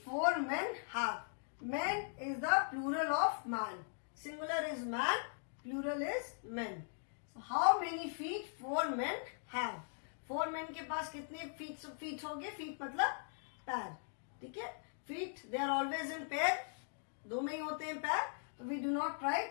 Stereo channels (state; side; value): silent; right; digital silence